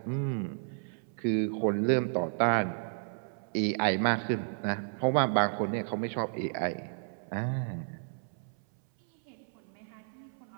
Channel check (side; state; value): left; silent; 56 dB below the other